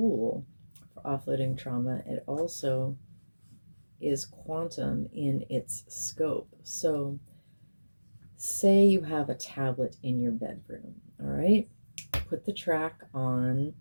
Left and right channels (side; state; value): both; inverted; correlation -1.00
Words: for offloading trauma. It also is quantum in its scope. So say you have a tablet in your bedroom, all right? Put the track on,